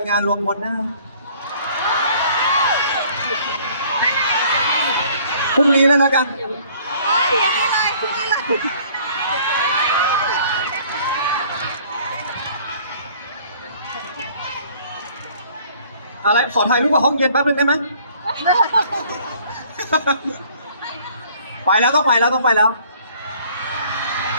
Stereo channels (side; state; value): both; inverted; correlation -0.56